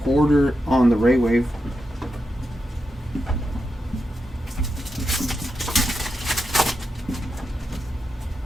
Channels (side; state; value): both; normal; correlation 0.87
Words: Porter on the Ray Wave.